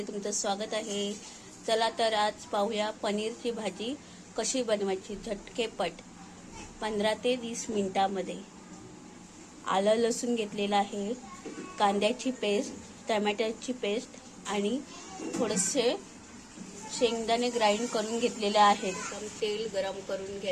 तुमचं स्वागत आहे। चला तर आज पाहूया पनीरची भाजी कशी बनवायची झटकेपट 15 ते 20 मिनिटांमध्ये। आलं लसूण घेतलेलं आहे, कांद्याची पेस्ट, टोमॅटोची पेस्ट आणि थोडेसे शेंगदाणे ग्राइंड करून घेतलेले आहेत। तर तेल गरम करून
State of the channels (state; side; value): identical; both; correlation 1.00